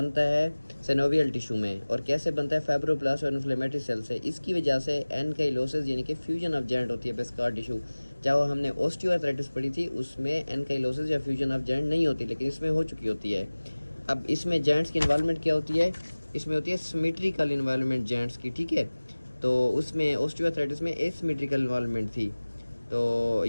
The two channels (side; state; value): both; inverted; correlation -1.00